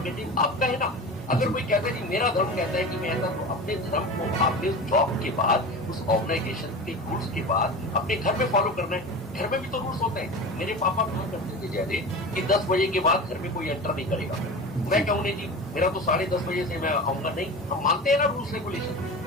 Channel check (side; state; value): both; normal; correlation 0.31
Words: आपका है ना। अगर कोई कहता है कि मेरा धर्म कहता है कि मैं ऐसा, तो अपने धर्म को आपने उस जॉब के बाद, उस ऑर्गेनाइजेशन के रूल्स के बाद अपने घर में फॉलो करना है। घर में भी तो रूल्स होते हैं। मेरे पापा कहा करते थे जयदेव कि 10 बजे के बाद घर में कोई एंटर नहीं करेगा। मैं कहूँ नहीं जी, मेरा तो 10:30 बजे से मैं आऊंगा, नहीं, हम मानते हैं ना रूल्स रेगुलेशन।